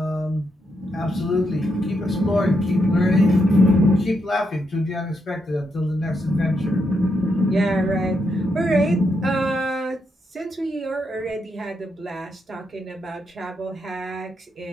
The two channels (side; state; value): both; normal; correlation 0.80